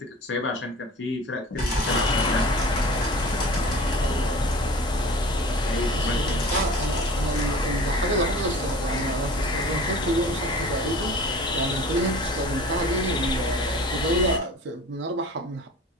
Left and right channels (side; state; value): both; normal; correlation 0.42